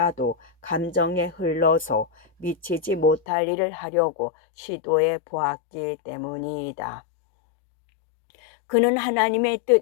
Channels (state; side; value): drops out; right; at 3.2 s